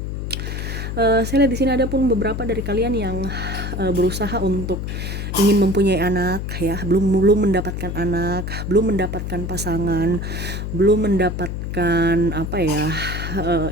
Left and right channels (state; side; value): noise; left; hum, 4 dB below the sound